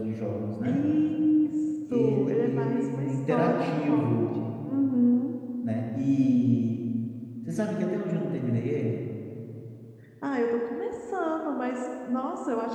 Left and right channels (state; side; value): identical; both; correlation 1.00